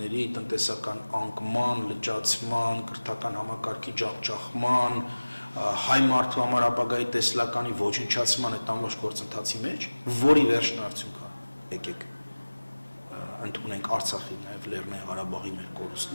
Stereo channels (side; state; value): both; inverted; correlation -1.00